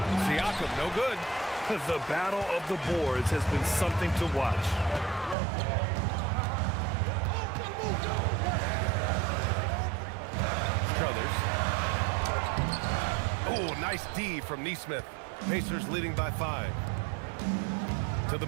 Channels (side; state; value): left; drops out; at 5.4 s